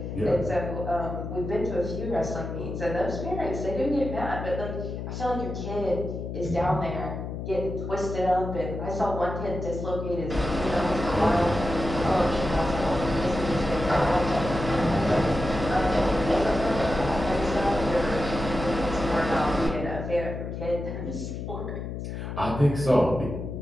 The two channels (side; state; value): left; noise; hum, 6 dB below the sound